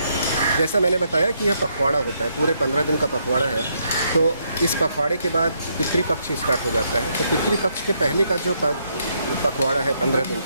जैसा मैंने बताया कि यह पखवाड़ा होता है, पूरे 15 दिन का पखवाड़ा है। तो इस पखवाड़े के बाद पितृपक्ष स्टार्ट हो जाता है। तो पितृपक्ष के पहले का जो पखवाड़ा है 15 दिन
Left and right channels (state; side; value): inverted; both; correlation -0.75